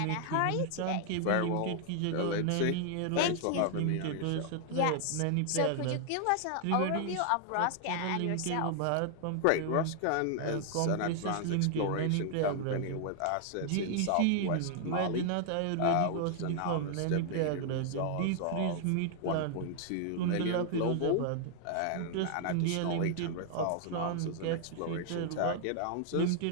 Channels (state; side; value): different; both; correlation 0.00